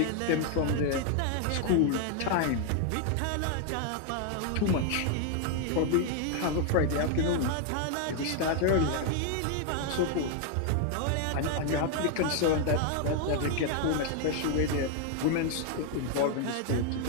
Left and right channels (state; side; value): different; both; correlation 0.00